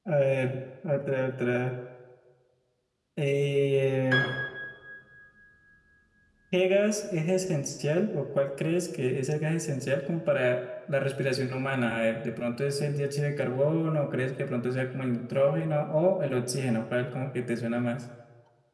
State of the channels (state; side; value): identical; both; correlation 1.00